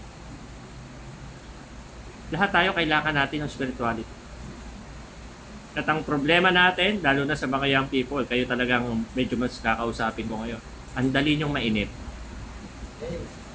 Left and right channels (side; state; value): both; identical; correlation 1.00